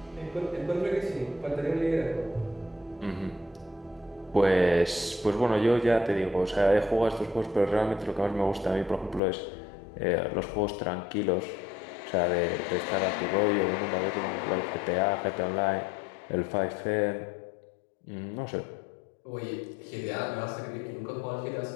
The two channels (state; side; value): drops out; right; at 9.2 s